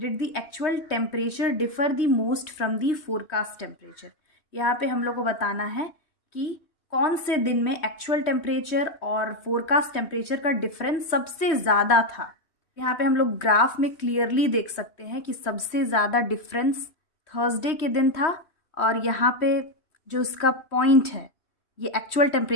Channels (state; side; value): late; right; 3.1 ms